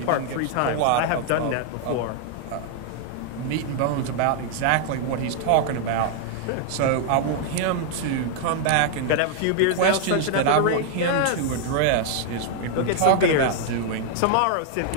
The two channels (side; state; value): both; different; correlation 0.00